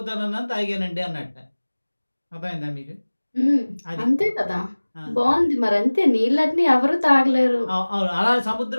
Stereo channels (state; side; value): inverted; both; correlation -1.00